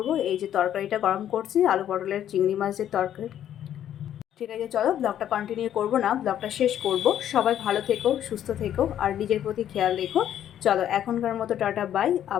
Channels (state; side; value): quieter; right; 10.7 dB